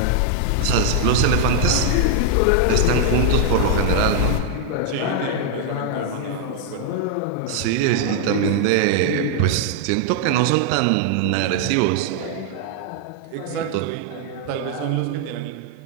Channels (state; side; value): different; both; correlation 0.00